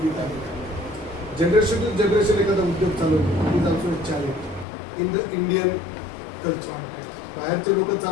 आहे. जनरेशन टू जनरेशन एखादा उद्योग चालवतो is also challenge in the Indian culture. बाहेरचे लोक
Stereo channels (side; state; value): right; drops out; at 4.7 s